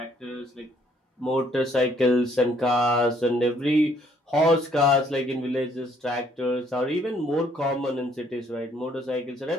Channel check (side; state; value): both; normal; correlation 0.65